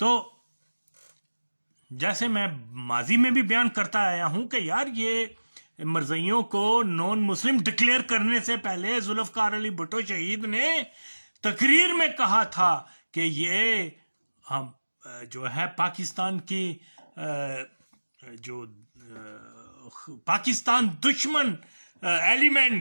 جیسے میں ماضی میں بھی بیان کرتا آیا ہوں کہ یار یہ مرزئیوں کو نون مسلم ڈکلیئر کرنے سے پہلے ذوالفقار علی بھٹو شہید نے تقریر میں کہا تھا کہ یہ ہم جو ہے پاکستان کی جو پاکستان دشمن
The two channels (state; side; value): inverted; both; correlation -1.00